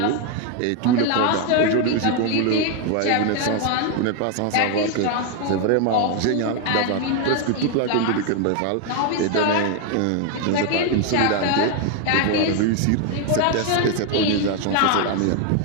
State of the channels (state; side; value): different; both; correlation 0.01